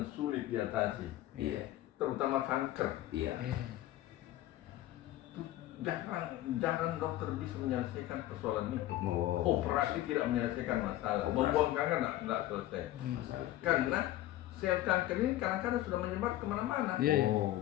sulit diatasi, Iya, terutama kanker. iya. Jarang dokter bisa menyelesaikan persoalan itu. Oh, Operasi tidak menyelesaikan masalah. Operasi. Membuang kanker nggak selesai. masalah. Karena sel kanker ini kadang-kadang sudah menyebar kemana-mana. Iya. Oh,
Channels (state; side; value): quieter; right; 14.8 dB